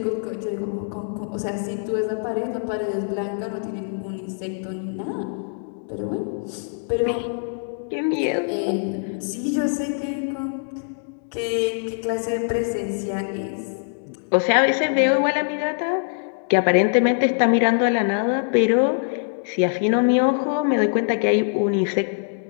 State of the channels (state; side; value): silent; right; digital silence